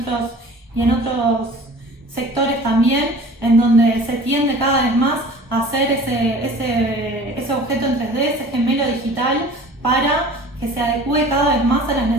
otros sectores también, en donde se tiende cada vez más a hacer ese objeto en 3D, ese gemelo digital, para que se adecue cada vez más a las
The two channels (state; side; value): normal; both; correlation 0.44